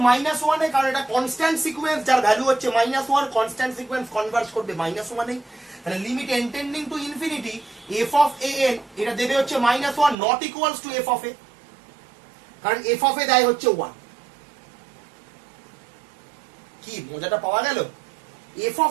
-1 এ, কারণ এটা কনস্ট্যান্ট সিকোয়েন্স যার ভ্যালু হচ্ছে -1, কনস্ট্যান্ট সিকোয়েন্স কনভার্জ করবে -1 এ। তাহলে limit n tending to infinity f of a n এটা দেবে হচ্ছে -1 not equals to f of a, কারণ এফ অফ এ দেয় হচ্ছে 1। কি মজাটা পাওয়া গেল? এফ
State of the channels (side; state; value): left; drops out; at 10.2 s